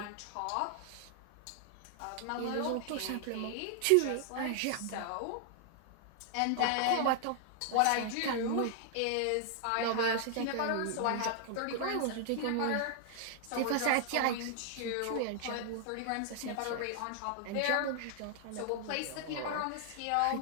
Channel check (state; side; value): different; both; correlation 0.00